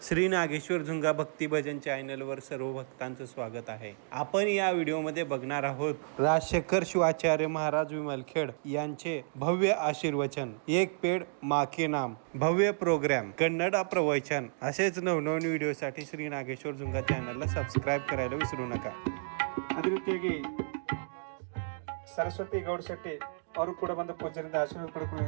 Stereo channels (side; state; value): left; silent; digital silence